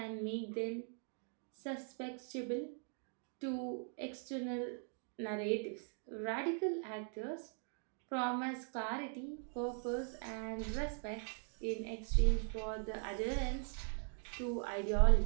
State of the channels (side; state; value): left; silent; 51 dB below the other